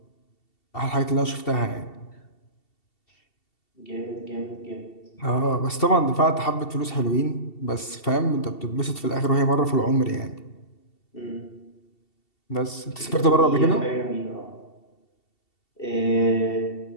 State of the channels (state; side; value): late; right; 2.7 ms